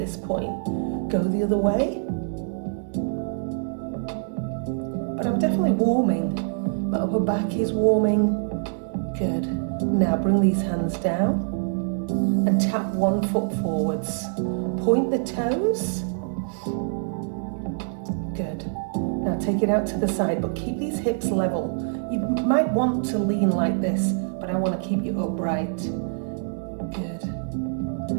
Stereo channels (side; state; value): left; silent; digital silence